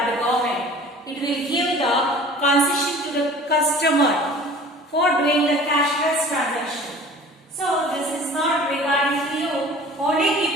the government. It will give the concession to the customer for doing the cashless transaction. So this is not regarding to you. Only keep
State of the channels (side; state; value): both; normal; correlation 0.45